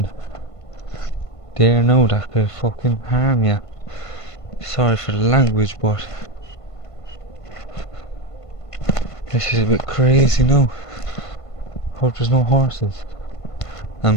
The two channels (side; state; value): right; late; 1.5 ms